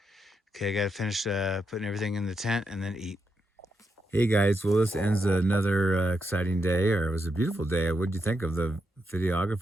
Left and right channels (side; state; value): both; normal; correlation 0.83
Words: Okay, I gotta finish putting everything in the tent and then eat. Hey guys, well this ends another exciting day, or it was a beautiful day. What did you think of the